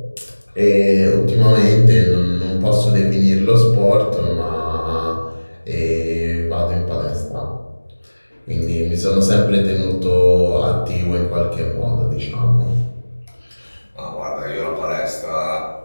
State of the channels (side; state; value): both; inverted; correlation -1.00